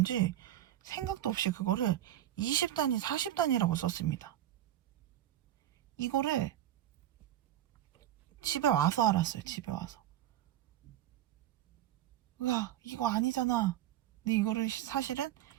생각도 없이 그거를 20단위, 40단위라고 썼습니다. 이거를 집에 와서 알았어요. 집에 와서. 으아, 이거 아니잖아. 근데 이거를 사실은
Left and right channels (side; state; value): left; quieter; 12.4 dB